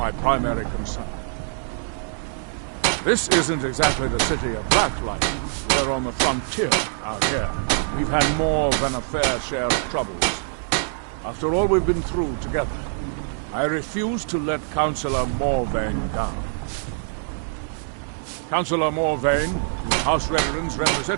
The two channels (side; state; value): left; silent; digital silence